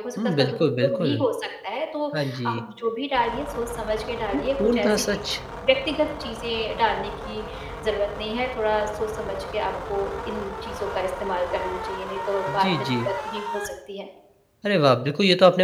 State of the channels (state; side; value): identical; both; correlation 1.00